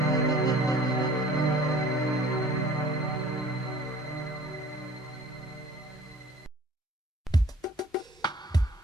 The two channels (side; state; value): both; normal; correlation 0.50